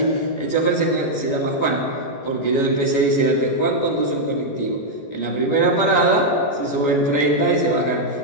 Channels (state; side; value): late; right; 14 ms